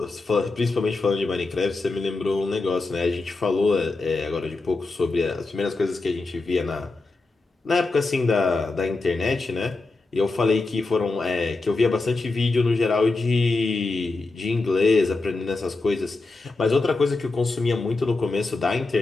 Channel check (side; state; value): right; quieter; 3.5 dB